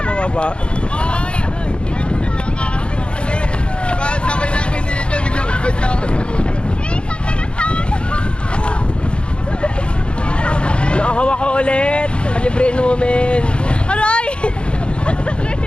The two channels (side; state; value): right; late; 0.056 ms